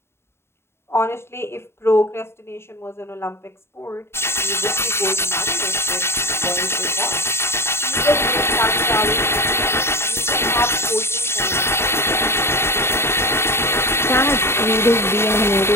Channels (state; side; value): late; right; 0.12 ms